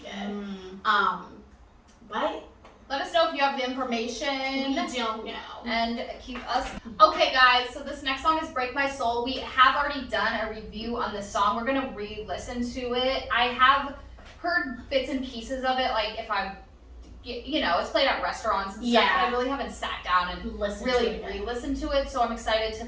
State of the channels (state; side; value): identical; both; correlation 1.00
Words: did. But Let us know if you have the we information. don't know. And keep us. Okay, guys, so this next song is Break My Soul. We have already done a review on this song. We're going to re-listen to it. I have heard bits and pieces of it, like if I'm, you know, it's played at restaurants and stuff, Yeah. but I really haven't sat down and Listen really to it. re-listen to it, so I'm excited to